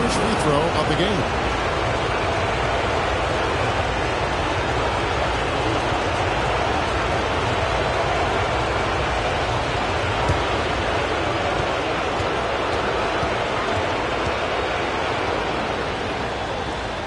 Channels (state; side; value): identical; both; correlation 1.00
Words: free throw of the game.